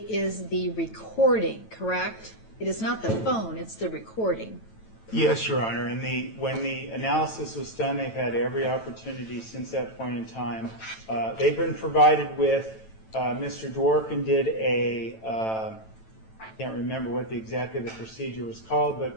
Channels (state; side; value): late; right; 9.1 ms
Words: is the recording, correct? It is not the phone, it's the recording. Yes, Your Honor. And when the analysis was done, they've had every opportunity since that point in time. They've been provided with, Mr. Dworkin did I can't remember what exactly the procedure was called,